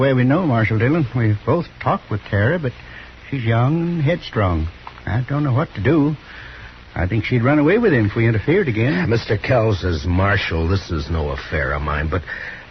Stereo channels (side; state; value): both; identical; correlation 1.00